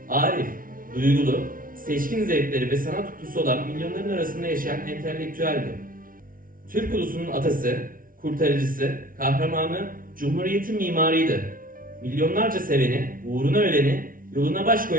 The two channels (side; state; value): left; late; 0.40 ms